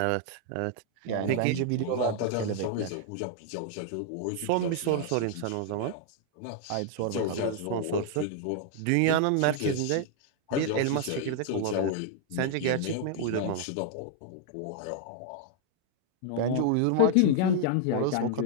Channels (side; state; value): both; different; correlation 0.00